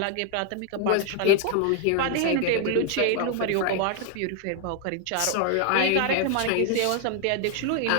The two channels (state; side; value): different; both; correlation 0.00